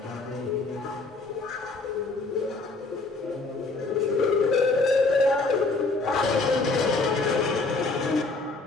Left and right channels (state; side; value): quieter; right; 3.5 dB